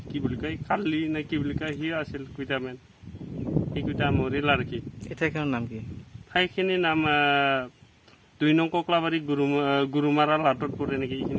কি বুলি কয় কালি নে কি বুলি কয় সি আছিল কেইটামান, সেইকেইটা মৰিল আৰু কি। এই ঠাইখনৰ নাম কি? ঠাইখিনিৰ নাম 2 নং কোকলাবাৰী গুৰুমাৰা লাটত পৰে নেকি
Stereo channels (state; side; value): identical; both; correlation 1.00